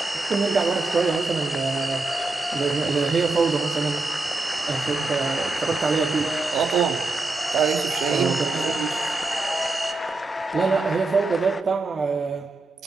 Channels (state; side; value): quieter; left; 3.3 dB